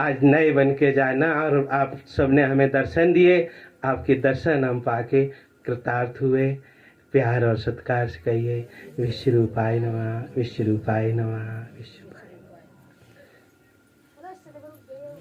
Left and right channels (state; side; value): identical; both; correlation 1.00